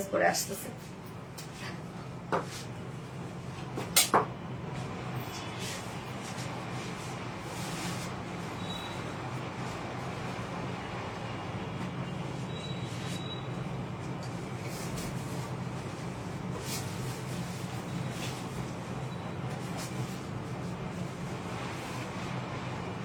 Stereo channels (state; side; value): identical; both; correlation 1.00